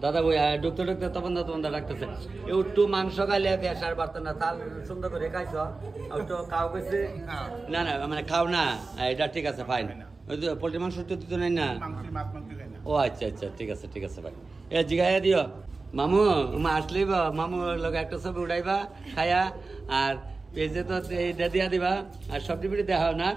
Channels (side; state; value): left; quieter; 3.8 dB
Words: দাদা বই ঢুকতে তপনদার রাখতেছে একটু মাংস খাইলে পেশার বাড়তো না তাল সুন্দর করে খাইছ একটু খাও কইছে না মানে খাও না এটা ঠিক আছে ফাইন ওই তো পোল্ট্রি মাংস তো নাই না ও আচ্ছা ঠিক আছে ভাই এ জিগাইয়া দিও মামু আসলেই মামু লগে একটা ছবি উঠাইবা খায়া আর পেজে তো এইটা দিয়া দিবা আর সবজি পিঠে দেখা না